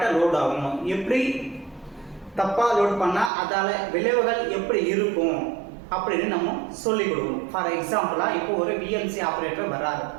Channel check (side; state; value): left; drops out; at 3.3 s